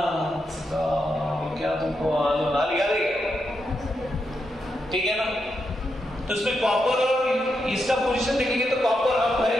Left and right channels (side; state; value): both; normal; correlation 0.84